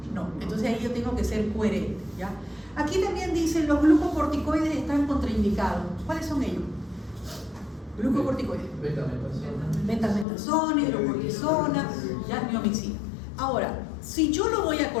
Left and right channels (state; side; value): drops out; right; at 10.2 s